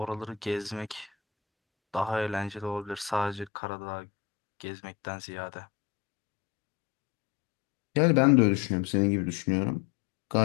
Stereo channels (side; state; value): right; drops out; at 3.5 s